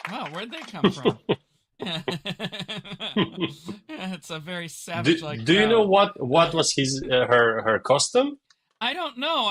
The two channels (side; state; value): both; identical; correlation 1.00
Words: Wow, where'd they come from? It's a very savage-like Do you know crowd. what was his her costume? I don't know.